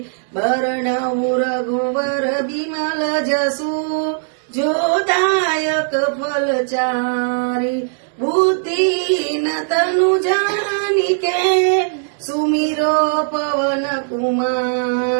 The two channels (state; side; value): silent; left; digital silence